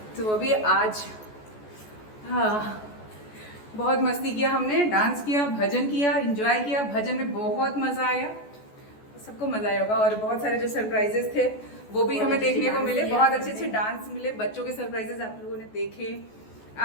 तो अभी आज हाँ बहुत मस्ती किया हमने, डांस किया, भजन किया, एंजॉय किया। भजन में बहुत मजा आया, सबको मजा आया होगा। और बहुत सारे जो सरप्राइजेस थे वो भी हमें देखने को मिले, बहुत अच्छे अच्छे डांस मिले, बच्चों के सरप्राइजेस आप लोगों ने देखे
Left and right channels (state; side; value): late; right; 14 ms